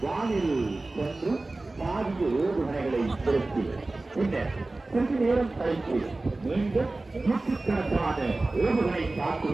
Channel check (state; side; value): quieter; left; 3.1 dB